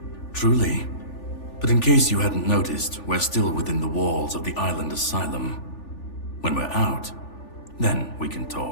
truly. But in case you hadn't noticed, we're still within the walls of the island asylum. When we're out, then we can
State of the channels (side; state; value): right; late; 3.4 ms